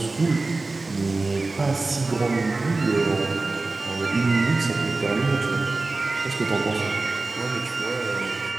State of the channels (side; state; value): left; quieter; 3.4 dB